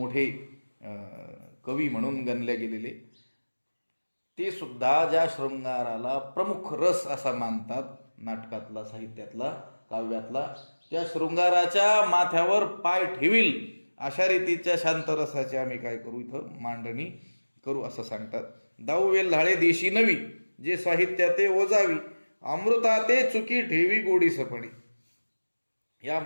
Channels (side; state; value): both; inverted; correlation -1.00